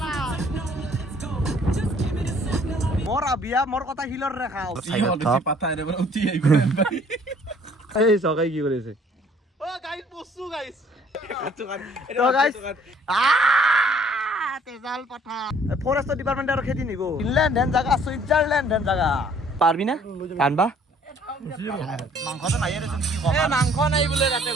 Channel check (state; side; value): normal; both; correlation 0.58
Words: মোর আবিয়া মোর কথা হিলর রেখাও এই সকাই কি করেছে ও গাইস বসু গাইস তো গাইস তেজাল পাঠা ফরেস্ট ডিপার্টমেন্ট আর খেদি নিব ইনল্যান্ড হেন জায়গা সুইজারল্যান্ড হেন জায়গা পারবি না কানবা মাংসটো নাই রে কি কম মাংস নাই বোলে তাতে